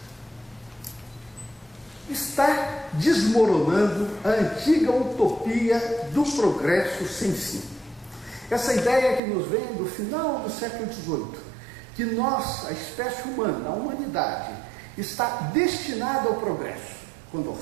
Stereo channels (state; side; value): drops out; left; at 9.2 s